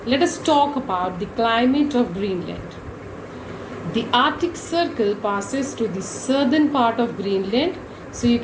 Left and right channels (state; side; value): identical; both; correlation 1.00